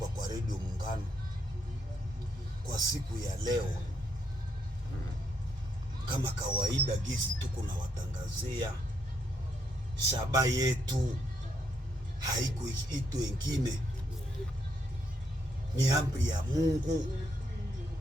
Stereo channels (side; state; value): both; normal; correlation 0.76